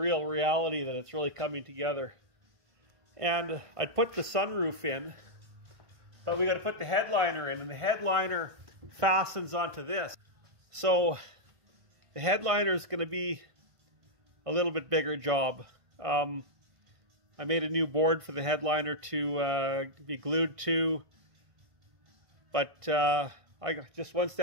reality that it's really coming together. And I'd put the sunroof in, but we got to put the headliner in, and the headliner fastens onto this. So the headliner is going to be a little bit bigger job. I made a new board for the headliner to be glued to, but I got just one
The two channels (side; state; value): left; late; 1.5 ms